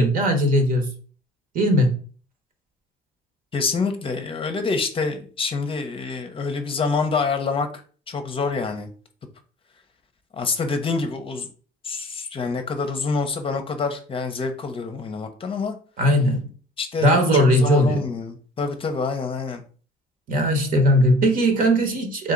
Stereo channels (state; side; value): normal; both; correlation 0.47